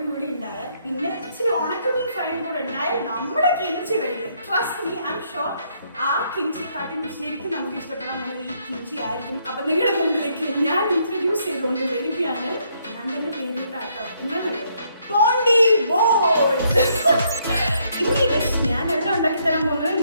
കൂടി ഉണ്ടായാൽ പിന്നെ ഇച്ചിരി ഉണക്കമീൻ ഫ്രൈയും കൂടെ ഉണ്ടായാൽ നമ്മുടെ കിംചി വേണ്ടി. Trust me, I am sure ആ കിംചി കാട്ടി ശരിക്കും നമുക്ക് ഇഷ്ടപ്പെടാൻ പോകുന്നത് ഈ കിംചി ആയിരിക്കും. അപ്പൊ നിങ്ങളുടെ മുമ്പിലേക്ക് ഞാൻ ഇൻട്രൊഡ്യൂസ് ചെയ്തുകൊണ്ട് വരികയാണ്. ഞാൻ തന്നെ പേരിട്ടാട്ടോ, എന്താ പോണ്ടി ബോൾസ്. ഇനി ഡിഷ് ഞാനെല്ലാം ഉണ്ടാക്കി തരാൻ പോകുന്നത്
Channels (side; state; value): both; inverted; correlation -0.72